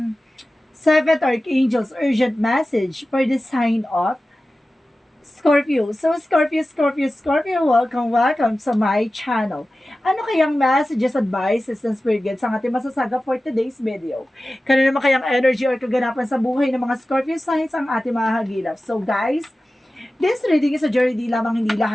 Seventh Archangel's urgent message for the sign of Scorpio. So Scorpio, welcome sa my channel. Ano kayang messages, advices, and spirit guides ang ating masasaga for today's video? Kano naman kayang energy or kaganapan sa buhay ng mga Scorpio signs ang ating mga hagilap? So guys, this reading is a journey, di lamang hindi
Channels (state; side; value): normal; both; correlation 0.95